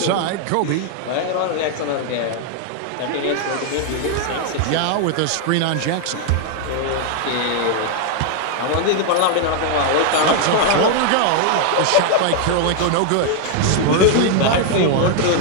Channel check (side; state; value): both; different; correlation 0.00